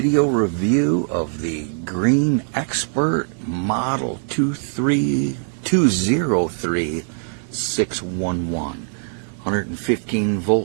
review of the Green Expert Model 203611. 115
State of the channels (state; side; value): silent; left; digital silence